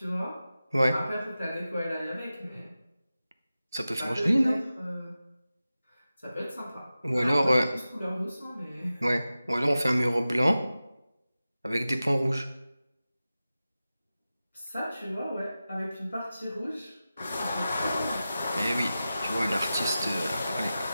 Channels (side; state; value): both; inverted; correlation -0.94